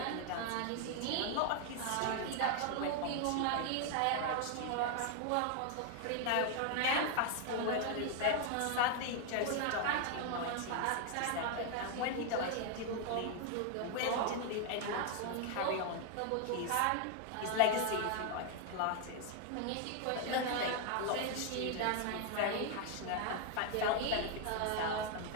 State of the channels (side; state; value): both; different; correlation 0.01